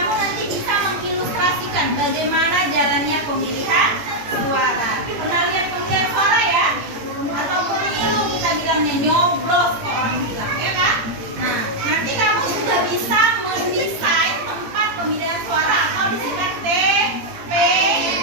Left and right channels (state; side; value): late; left; 17 ms